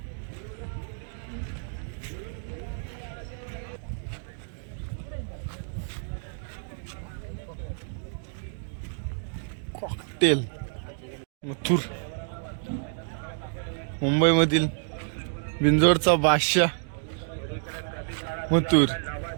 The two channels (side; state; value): left; silent; digital silence